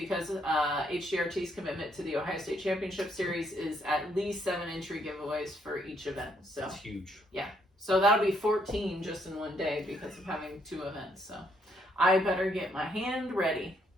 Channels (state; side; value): normal; both; correlation 0.72